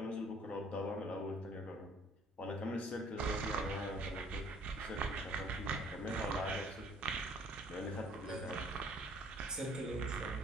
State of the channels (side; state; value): both; normal; correlation 0.58